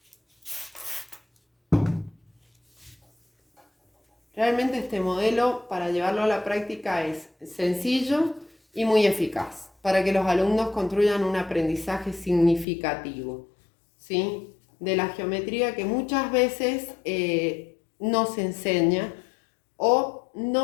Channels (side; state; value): right; drops out; at 12.7 s